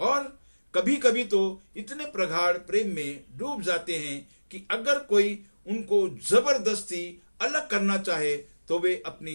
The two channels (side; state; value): both; inverted; correlation -1.00